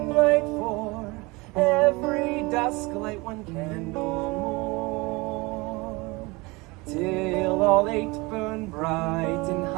light 4, every dusk light 1 candle more, till all 8 burn bright and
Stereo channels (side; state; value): left; quieter; 24.6 dB